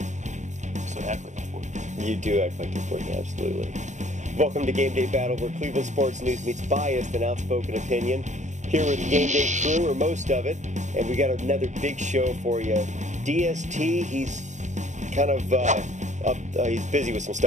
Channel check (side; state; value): left; late; 0.35 ms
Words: So I act like I'm 14. You do act like you're 14, absolutely. Welcome to Game Day Battle, where Cleveland sports news meets biased and outspoken opinion. Here with the Game Day crew, or most of it, and we got another big show for you. DST, he's kind of he's busy with some